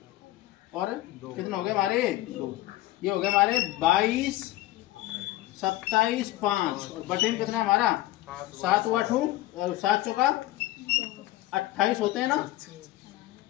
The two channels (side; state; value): right; quieter; 16.4 dB